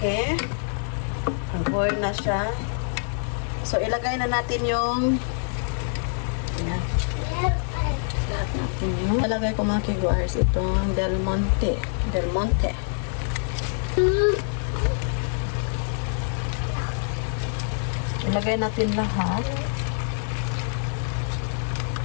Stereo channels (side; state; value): right; silent; 61 dB below the other